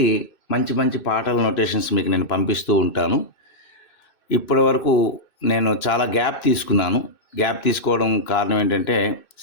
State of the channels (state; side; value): late; right; 2.6 ms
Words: మంచి మంచి పాటల నొటేషన్స్ మీకు నేను పంపిస్తూ ఉంటాను. ఇప్పటి వరకు నేను చాలా గ్యాప్ తీసుకోవడం కారణం ఏంటంటే